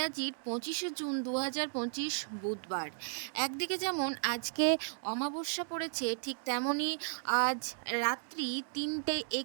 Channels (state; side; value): silent; left; digital silence